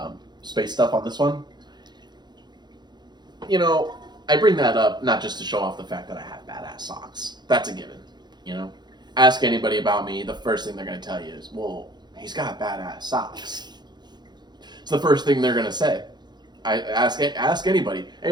space stuff on this one. You know, I bring that up not just to show off the fact that I have badass socks. That's a given. You know, ask anybody about me, the first thing they're gonna tell you is, "Well, he's got badass socks." It's the first thing they're gonna say. I ask anybody.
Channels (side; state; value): left; late; 0.21 ms